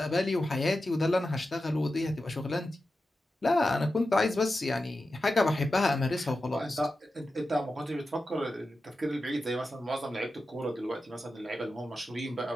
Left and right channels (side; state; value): both; normal; correlation 0.91